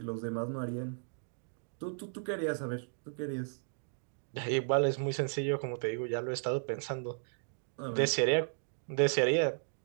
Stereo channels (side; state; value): left; silent; digital silence